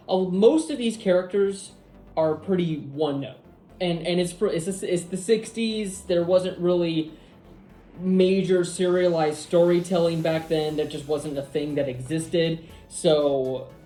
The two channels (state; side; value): identical; both; correlation 1.00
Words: most of these characters are pretty one note, and it's the 60s. There wasn't really major serialized storytelling back then. That just wasn't a thing that existed. So